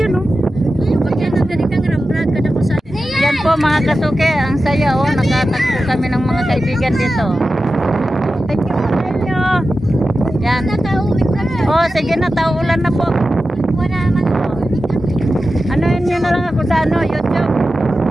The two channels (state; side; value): normal; both; correlation 0.93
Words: oh. Ayun, pag yan ang galing kang rambrad ka na ko sa... Yan po mga kasuke, ang saya oh. Nakatagpo kami ng mga kaibigan dito. Thank you po sa inyo. Yan. Oh, sige na, taulan na po. Wala naman ako. Ano yun na lang ako sa ano, YouTube.